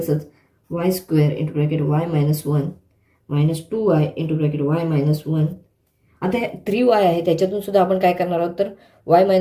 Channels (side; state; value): both; identical; correlation 1.00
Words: y square into bracket y minus 1 minus 2y into bracket y minus 1. आता 3y आहे त्याच्यातून सुद्धा आपण काय करणार आहोत तर y